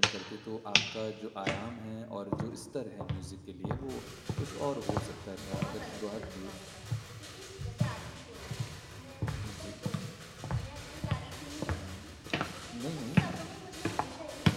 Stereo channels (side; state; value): both; identical; correlation 1.00